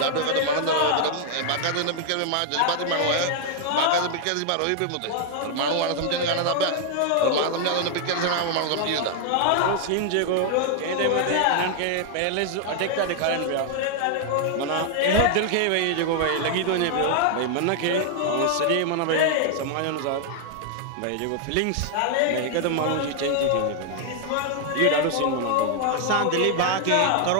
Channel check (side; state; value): both; different; correlation 0.00